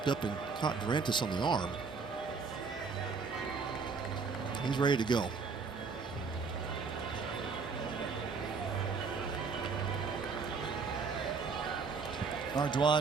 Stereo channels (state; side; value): quieter; left; 5.0 dB